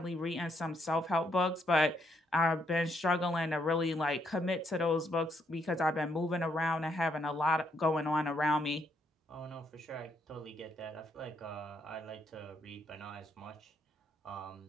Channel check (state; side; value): normal; both; correlation 0.74